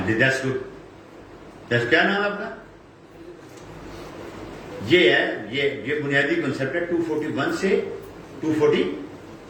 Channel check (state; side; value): identical; both; correlation 1.00